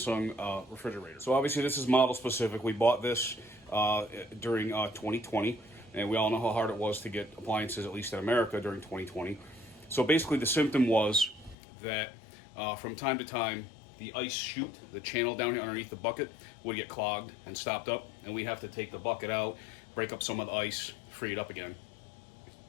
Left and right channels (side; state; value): right; drops out; at 11.6 s